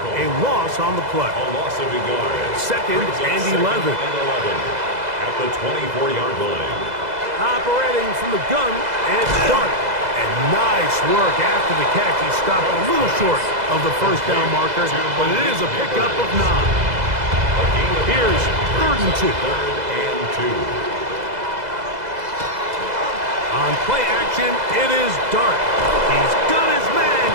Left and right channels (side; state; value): left; late; 2.0 ms